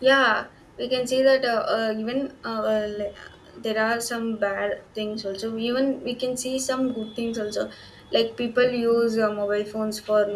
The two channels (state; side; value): identical; both; correlation 1.00